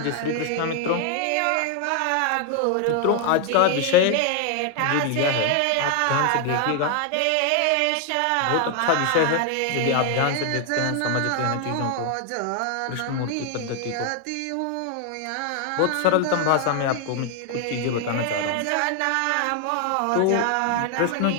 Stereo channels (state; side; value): different; both; correlation 0.00